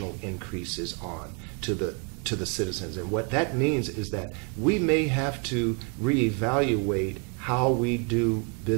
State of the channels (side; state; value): left; quieter; 35.7 dB